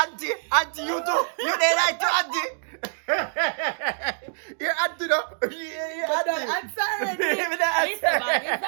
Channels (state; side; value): silent; left; digital silence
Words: you too. You did right to auntie. You're auntie though. You're auntie. I'm sorry. Listen, man, it's not